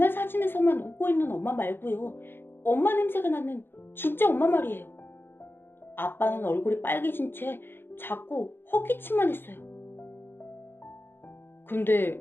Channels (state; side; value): late; right; 0.10 ms